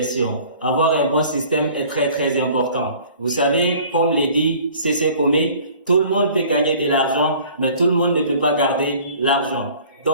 Avoir un bon système est très très important. Vous savez, comme le dit C.C. Comé, tout le monde peut gagner de l'argent, mais tout le monde ne peut pas garder l'argent.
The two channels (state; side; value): inverted; both; correlation -0.50